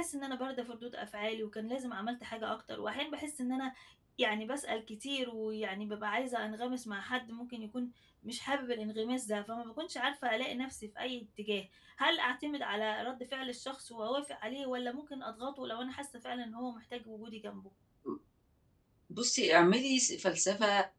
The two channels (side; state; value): both; identical; correlation 1.00